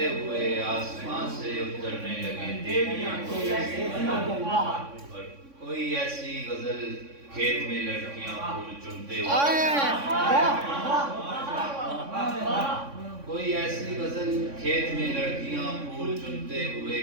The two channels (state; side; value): late; left; 3.6 ms